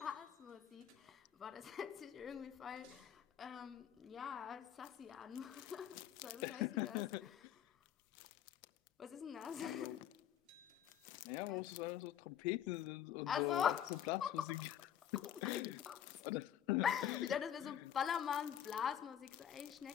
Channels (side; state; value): right; quieter; 10.1 dB